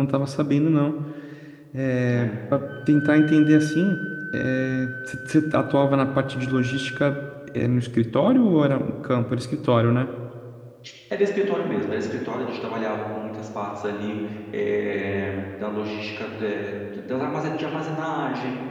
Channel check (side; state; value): both; identical; correlation 1.00